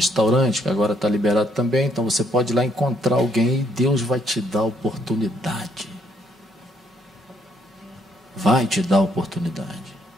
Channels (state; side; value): normal; both; correlation 0.70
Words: que agora está liberado também, então você pode ir lá encontrar alguém e Deus vai te dar a oportunidade. Vai te dar a oportunidade.